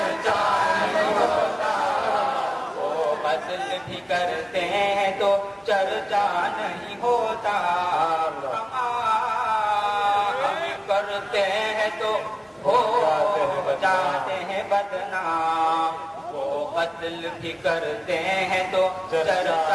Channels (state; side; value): identical; both; correlation 1.00